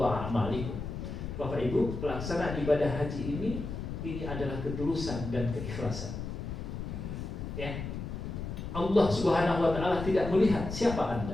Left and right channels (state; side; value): noise; left; rumble, 6 dB below the sound